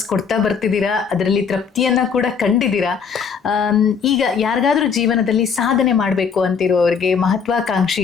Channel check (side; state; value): right; quieter; 6.2 dB